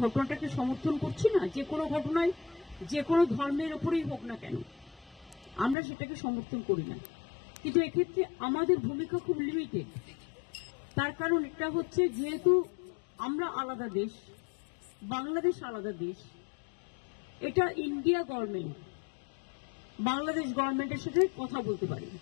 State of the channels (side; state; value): right; drops out; at 5.8 s